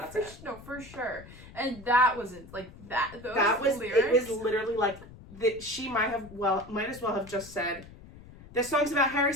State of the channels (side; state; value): left; noise; rumble, 18 dB below the sound